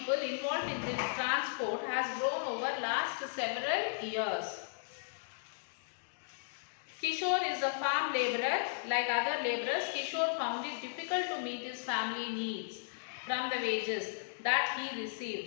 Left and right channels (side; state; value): right; silent; digital silence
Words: involved in this transport has grown over last several years. Kishore is a farm labourer. Like other labourers, Kishore found it difficult to meet his family needs from the wages that he